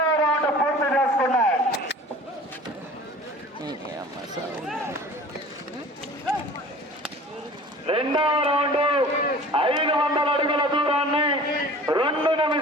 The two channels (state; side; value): normal; both; correlation 0.44